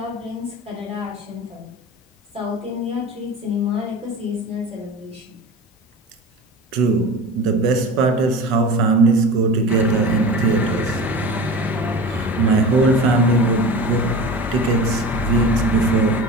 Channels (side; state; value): both; normal; correlation 0.33